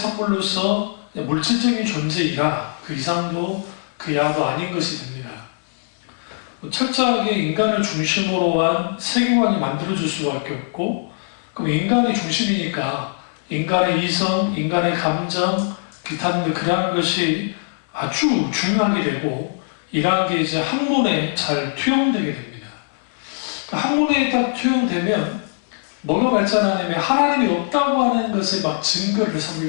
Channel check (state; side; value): silent; right; 63 dB below the other